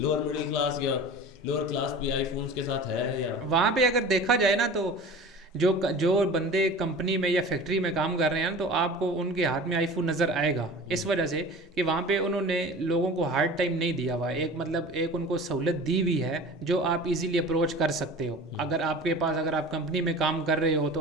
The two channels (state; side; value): normal; both; correlation 0.38